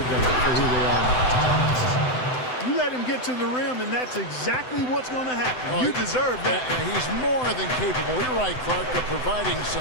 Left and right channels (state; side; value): late; right; 7.9 ms